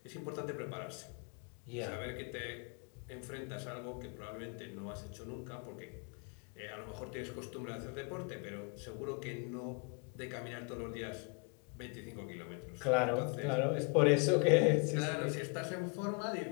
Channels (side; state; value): right; quieter; 34.6 dB